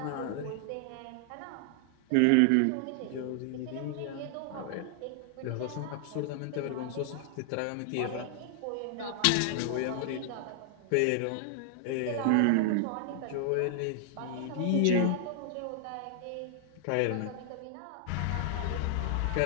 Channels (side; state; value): both; different; correlation -0.01